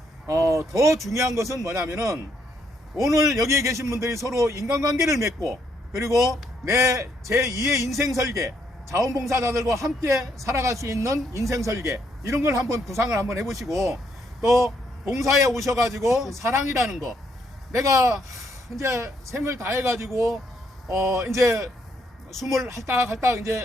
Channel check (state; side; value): normal; both; correlation 0.73